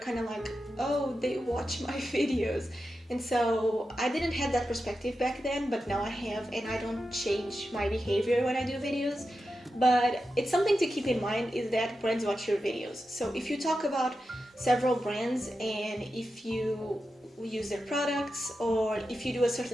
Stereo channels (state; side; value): normal; both; correlation 0.90